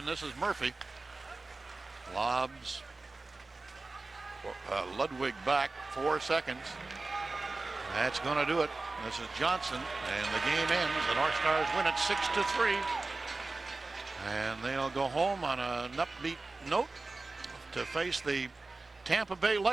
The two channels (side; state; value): left; quieter; 3.5 dB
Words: this is Murphy. Lobs Ludwig back. 4 seconds. That's going to do it. This is Johnson, and the game ends. The North Stars win it 6-3. And they'll go home on an upbeat note to face the Tampa Bay